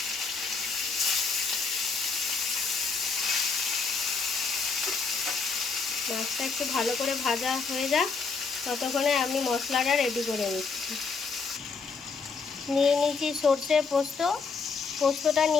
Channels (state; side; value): quieter; right; 4.9 dB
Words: মাছটা একটু ভালো করে ভাজা হয়ে যাক, ততক্ষণে আমি মশলাটা রেডি করে নিচ্ছি। নিয়ে নিয়েছি সর্ষে পোস্ত। পোস্তটা